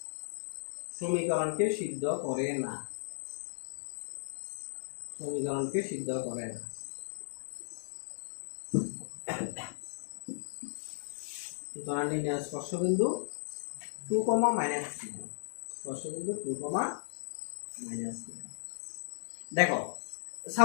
সমীকরণকে সিদ্ধ করে না, সমীকরণকে সিদ্ধ করে না। সুতরাং নির্ণয় স্পর্শবিন্দু 2, -9 স্পর্শবিন্দু 2, -9। দেখো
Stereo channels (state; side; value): silent; right; digital silence